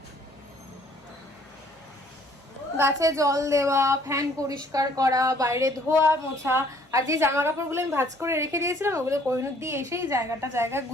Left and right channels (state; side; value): normal; both; correlation 0.60